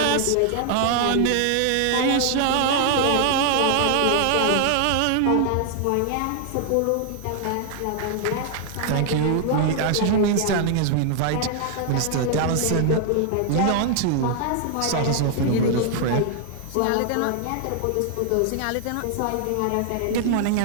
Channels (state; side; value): different; both; correlation 0.00